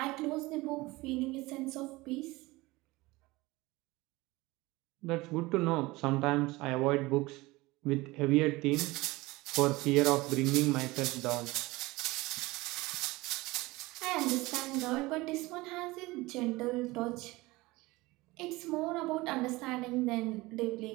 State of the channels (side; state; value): left; quieter; 21.2 dB